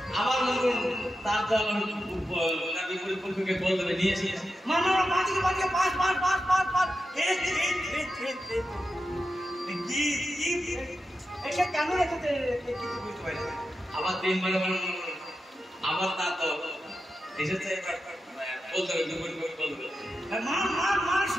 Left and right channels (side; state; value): both; normal; correlation 0.89